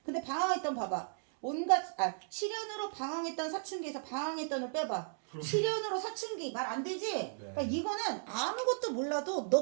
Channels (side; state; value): left; silent; digital silence